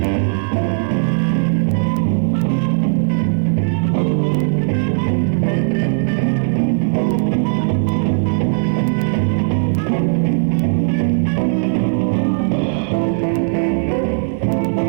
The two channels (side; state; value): left; silent; digital silence